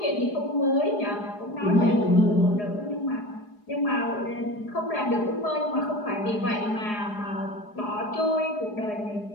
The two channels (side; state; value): right; late; 4.8 ms